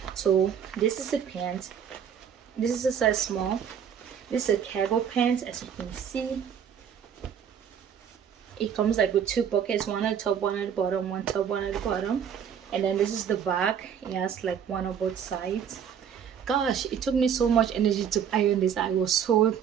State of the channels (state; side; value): quieter; left; 8.2 dB